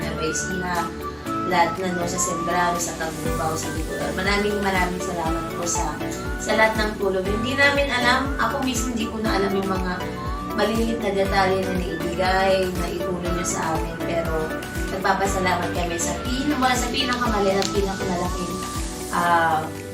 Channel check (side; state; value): both; identical; correlation 1.00